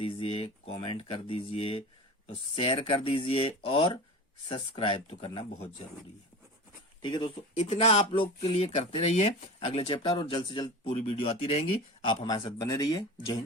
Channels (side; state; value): both; normal; correlation 0.32